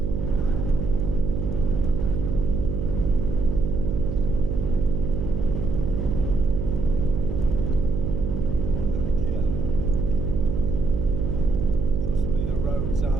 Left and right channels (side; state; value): right; noise; hum, 3 dB below the sound